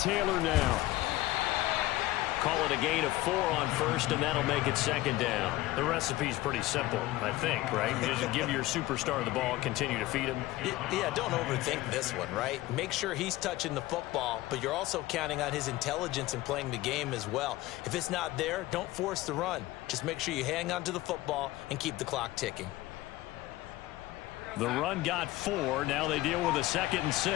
now. Call it a gain of 4 on first, and that'll make it 2nd down. The recipe's pretty simple, I think, right? You just give your superstar the ball, continue to feed him. Yeah, don't overthink this one, right? Make sure he's touching the football, but you're also counting on his intelligence in playing the game as well. If it's not there, don't force the run. Just make sure you hang on to the football and keep the clock ticking. The run got 4. Now they deal with a 2nd and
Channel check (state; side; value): quieter; right; 17.4 dB